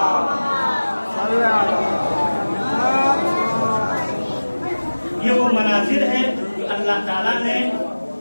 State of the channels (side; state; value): both; inverted; correlation -1.00